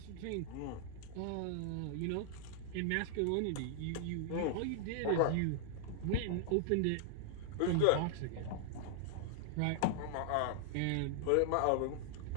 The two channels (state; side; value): different; both; correlation -0.01